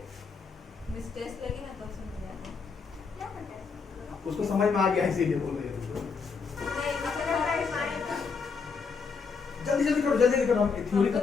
मिस्टेक लगी ना तो समझ जाना। क्या करते हैं? उसको समझ में आ गया इसीलिए बोल रही है तुमको। नहीं जल्दी जल्दी करो, जल्दी करो, हम थ्योरी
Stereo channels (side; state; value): right; quieter; 5.2 dB